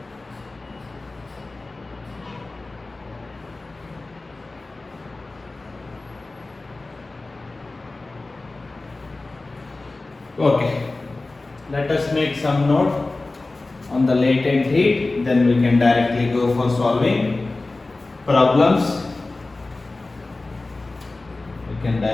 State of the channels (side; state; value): right; quieter; 3.2 dB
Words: Okay, let us make some note on the latent heat, then we can directly go for solving problems. We can